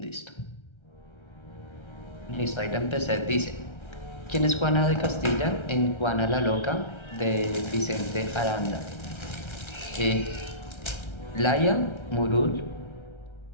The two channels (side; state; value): right; late; 1.3 ms